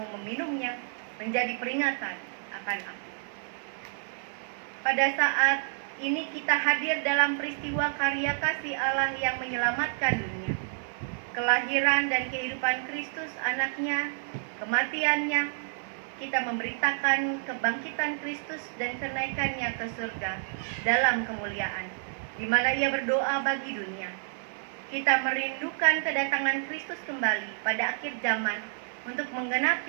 meminumnya menjadi peringatan akan aku." Pada saat ini kita hadir dalam peristiwa karya kasih Allah yang menyelamatkan dunia. Kelahiran dan kehidupan Kristus anaknya, kematiannya, kita memberitakan kebangkitan Kristus dan kenaikannya ke surga dalam kemuliaan, di mana ia berdoa bagi dunia. Kita merindukan kedatangan Kristus kembali pada akhir zaman untuk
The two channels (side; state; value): left; silent; digital silence